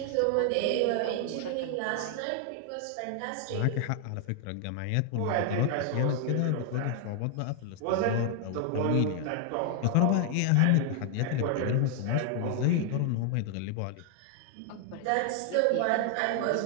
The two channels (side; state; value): both; different; correlation 0.00